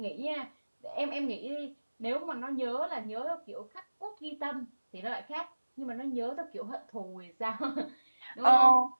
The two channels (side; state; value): both; inverted; correlation -1.00